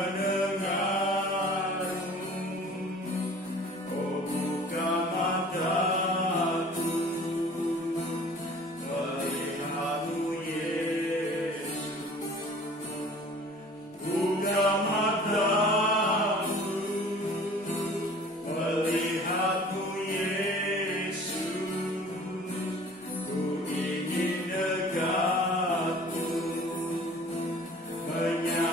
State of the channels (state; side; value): normal; both; correlation 0.47